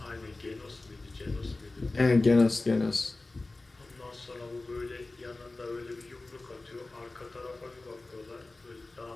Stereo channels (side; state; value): right; quieter; 3.1 dB